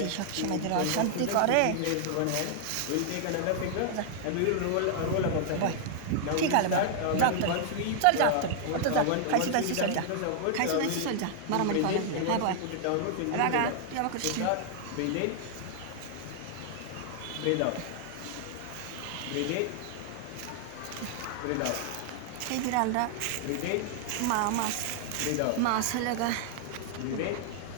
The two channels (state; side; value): different; both; correlation 0.00